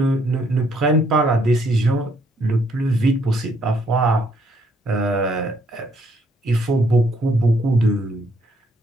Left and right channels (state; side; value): normal; both; correlation 0.69